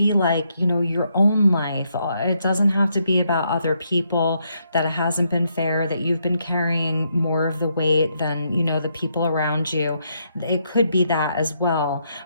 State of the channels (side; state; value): both; inverted; correlation -0.77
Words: like, you know, your own life. It doesn't have to be about other people, that it hasn't been fair, that you've been carrying more of the weight than, you know, the people around you. It could be that as well.